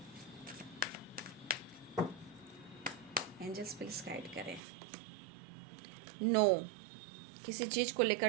एंजल्स प्लीज गाइड करें। नो, किसी चीज़ को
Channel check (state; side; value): drops out; left; at 4.6 s